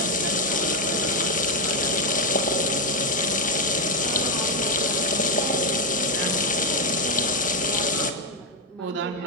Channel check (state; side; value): normal; both; correlation 0.04